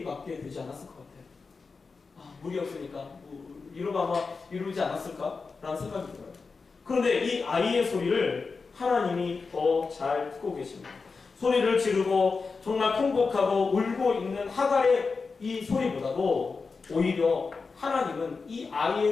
되지 않았을 것 같아요. 물이 없으니까 이러고 아마 이루지 않았을까? 라는 생각이 들어요. 그런데 이 아이의 소리를 하나님이 더 잘 듣고 계십니다. 소리를 지르고 정말 통곡하고 울고 있는 하갈의 이 소리보다도 오히려 하나님은 이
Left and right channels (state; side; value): quieter; right; 4.6 dB